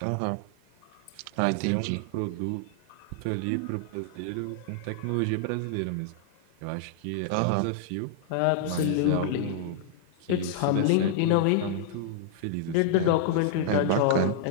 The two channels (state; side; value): different; both; correlation -0.01